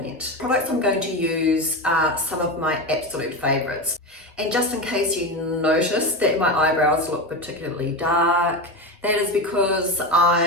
Products I'm going to use are some of my absolute favorites. And just in case you notice that my eyebrows look particularly dark, that is because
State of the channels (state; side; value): normal; both; correlation 0.19